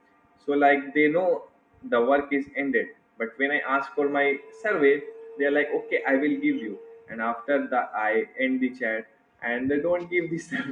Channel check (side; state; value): both; identical; correlation 1.00